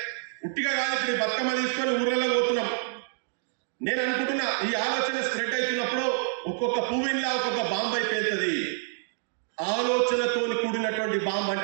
ఉట్టిగా కాదు, ఇప్పుడు బతుకమ్మ తీసుకొని ఊర్లలో పోతున్నాం. నేను అనుకుంటున్నా ఈ ఆలోచన స్ప్రెడ్ అవుతున్నప్పుడు ఒక్కొక్క పువ్వులా ఒక్కొక్క బాంబు అయిపోతుంది. ఆలోచనతో కూడినటువంటి బాంబు అంటే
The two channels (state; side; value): silent; left; digital silence